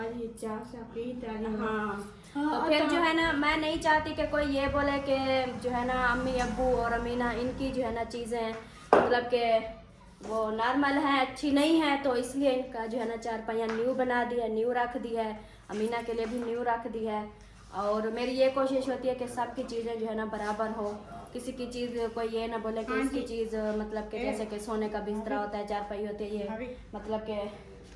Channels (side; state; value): both; identical; correlation 1.00